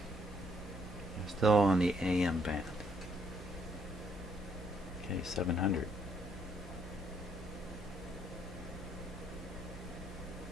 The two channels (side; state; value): both; normal; correlation 0.70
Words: I'm still on the AM band. Okay, 700.